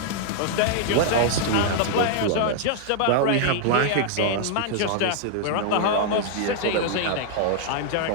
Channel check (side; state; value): both; different; correlation -0.01